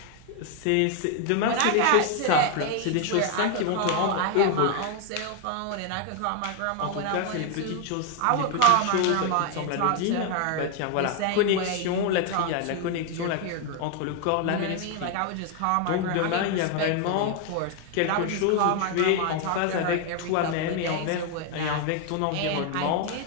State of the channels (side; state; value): both; different; correlation 0.00